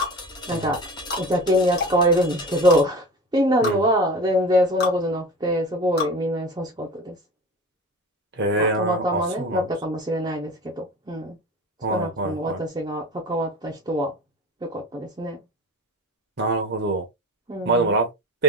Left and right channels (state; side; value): normal; both; correlation 0.34